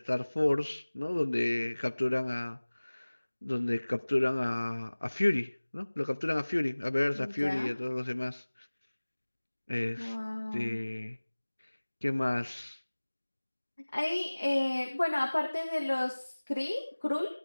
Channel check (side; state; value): both; inverted; correlation -1.00